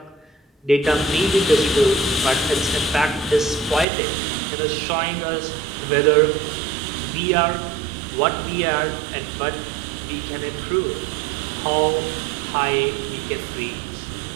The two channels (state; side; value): drops out; left; at 3.9 s